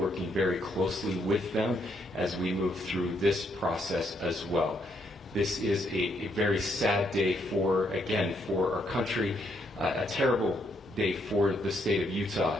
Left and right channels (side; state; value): both; normal; correlation 0.74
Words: very closely with them as we move through this process as well. This is a very sad day for our country, a terrible day for the state of